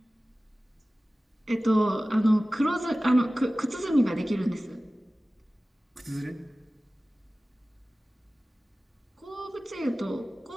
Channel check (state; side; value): normal; both; correlation 0.97